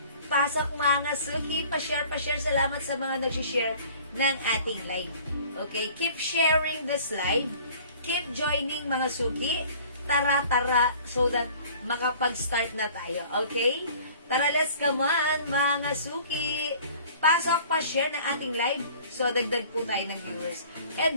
Pasok mga suki. Pa-share. Salamat sa mga nag-share ng ating live. Okay, keep sharing this live. Keep joining mga suki. Tara, so that makapag-start na tayo. Okay? Tara, let's come on, mga suki. Pasok, pa-share ng ating live. So, dagdag po tayo ng viewers.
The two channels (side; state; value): both; inverted; correlation -0.49